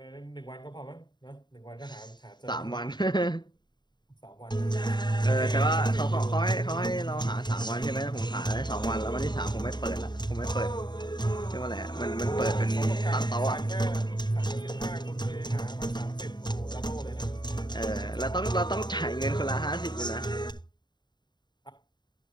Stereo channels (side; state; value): right; late; 0.21 ms